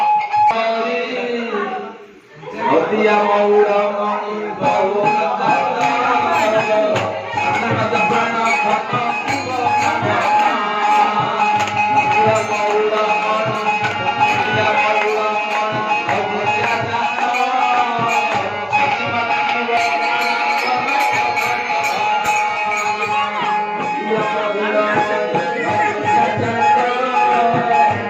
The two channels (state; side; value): identical; both; correlation 1.00